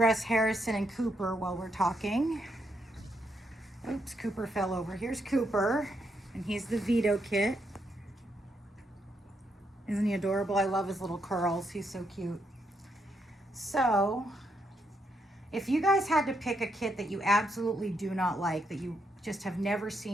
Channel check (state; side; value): normal; both; correlation 0.78